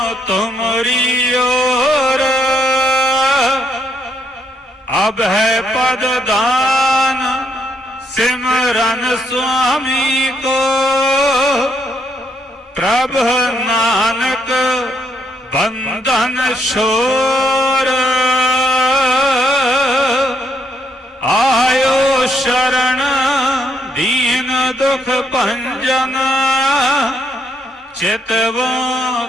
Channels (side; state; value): both; normal; correlation 0.74